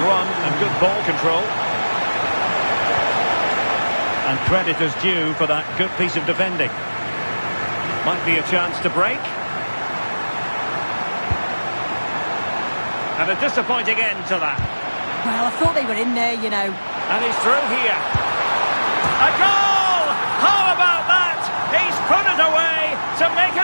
run and good ball control. And credit is due for that good piece of defending. Might be a chance to break. And a disappointing end to that. Well, I thought they were in there, you know. And he's through here. A goal! How about that? He's put it away to make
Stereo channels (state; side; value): inverted; both; correlation -1.00